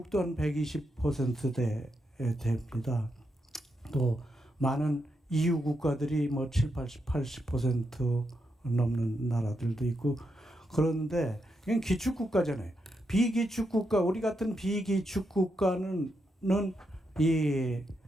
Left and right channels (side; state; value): both; normal; correlation 0.83